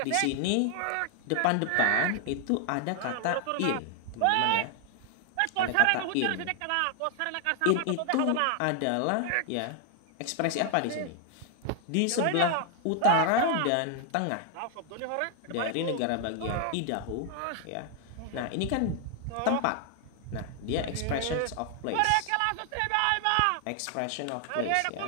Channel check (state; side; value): different; both; correlation 0.00